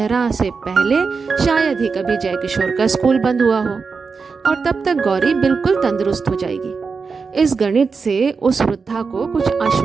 से पहले शायद ही कभी जय किशोर का स्कूल बंद हुआ हो, और तब तक गौरी बिल्कुल तंदुरुस्त हो जाएगी। इस गणित से उस वृद्धा को कुछ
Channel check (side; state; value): left; quieter; 5.0 dB